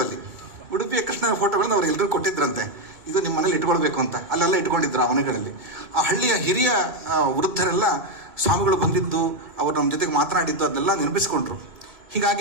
ಅಲ್ಲಿ. ಉಡುಪಿಯ ಕೃಷ್ಣನ ಫೋಟೋಗಳನ್ನ ಅವ್ರು ಎಲ್ಲರೂ ಕೊಟ್ಟಿದ್ರಂತೆ, ಇದು ನಿಮ್ಮ ಮನೇಲಿ ಇಟ್ಕೊಳ್ಬೇಕು ಅಂತ. ಅಲ್ಲೆಲ್ಲ ಇಟ್ಕೊಂಡಿದ್ರು ಆ ಮನೆಗಳಲ್ಲಿ. ಆ ಹಳ್ಳಿಯ ಹಿರಿಯ ವೃದ್ಧರೆಲ್ಲ ಸ್ವಾಮಿಗಳು ಬಂದಿದ್ದು, ಅವರು ನಮ್ಮ ಜೊತೆಗೆ ಮಾತನಾಡಿದ್ದು ಅದನ್ನೆಲ್ಲ ನೆನಪಿಸ್ಕೊಂಡ್ರು.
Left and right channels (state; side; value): late; left; 2.3 ms